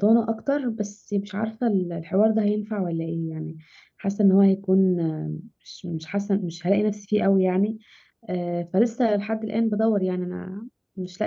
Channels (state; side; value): identical; both; correlation 1.00